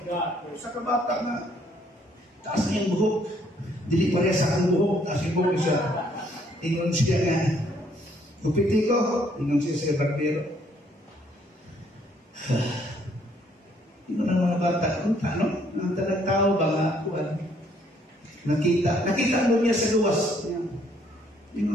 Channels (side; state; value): both; normal; correlation 0.66